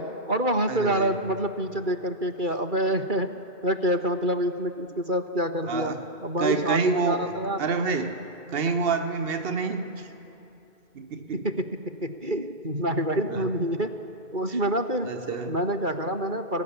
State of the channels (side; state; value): left; late; 2.7 ms